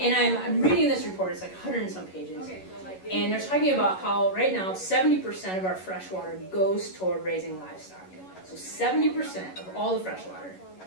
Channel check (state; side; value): late; right; 11 ms